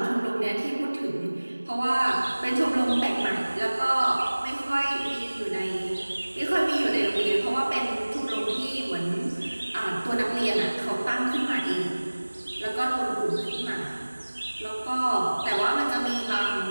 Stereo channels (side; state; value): both; inverted; correlation -1.00